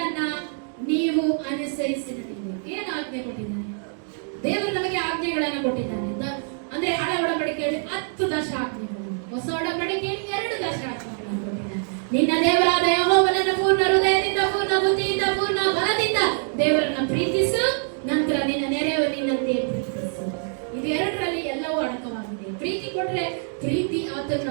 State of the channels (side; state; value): left; silent; 58 dB below the other